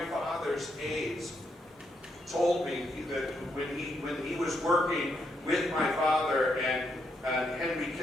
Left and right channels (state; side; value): normal; both; correlation 0.78